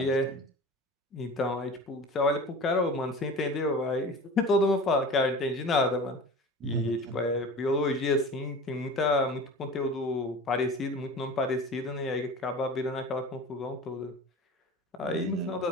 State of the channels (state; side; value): normal; both; correlation 0.36